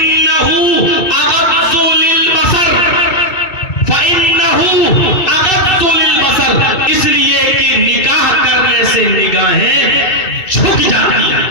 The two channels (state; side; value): late; right; 2.6 ms